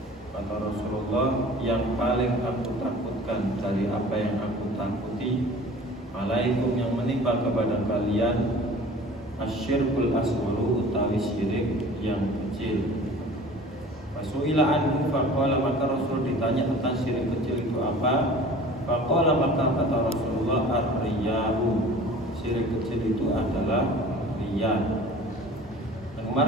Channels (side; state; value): both; normal; correlation 0.44